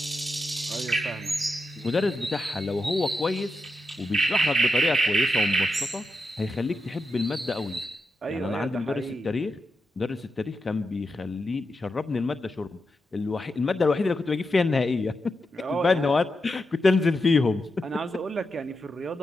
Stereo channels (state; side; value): normal; both; correlation 0.86